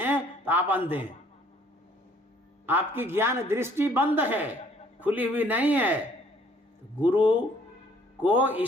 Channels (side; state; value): both; normal; correlation 0.60